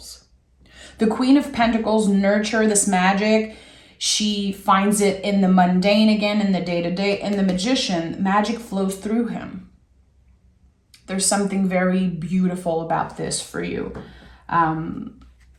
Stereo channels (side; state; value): both; identical; correlation 1.00